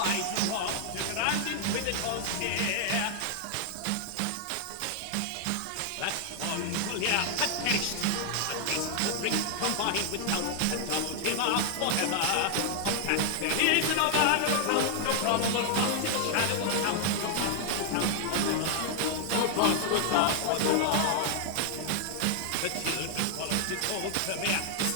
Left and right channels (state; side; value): different; both; correlation 0.00